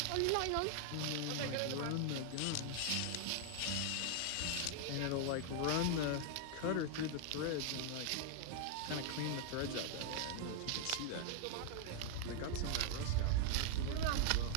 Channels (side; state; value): both; different; correlation 0.00